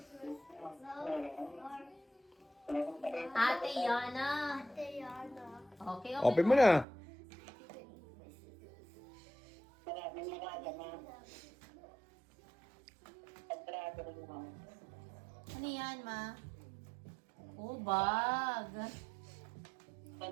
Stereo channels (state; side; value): drops out; left; at 6.9 s